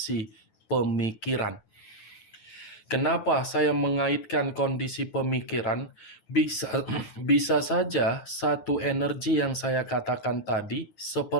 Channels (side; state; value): right; late; 9.0 ms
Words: pemikiran. Kenapa saya mengaitkan kondisi pemikiran? Bisa bisa saja satu energi yang saya katakan tadi